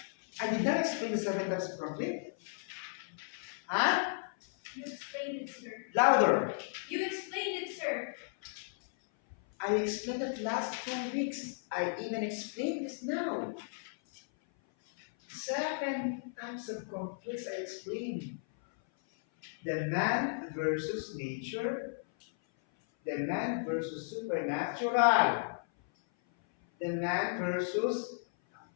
I did not explain the 7 types of conflict. Huh? You explained it, sir. Louder. You explained it, sir. I explained it last 2 weeks. I even explained this now. 7 types of conflicts I explained. The man versus nature. The man versus supernatural. The man versus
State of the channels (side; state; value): right; silent; 55 dB below the other